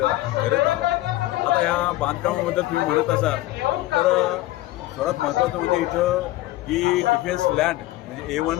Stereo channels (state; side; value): quieter; right; 16.8 dB